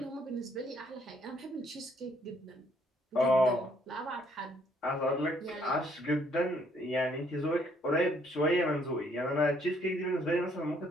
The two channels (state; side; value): normal; both; correlation 0.67